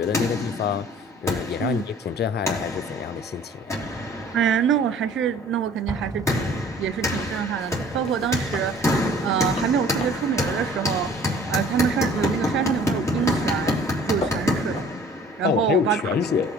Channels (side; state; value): both; normal; correlation 0.51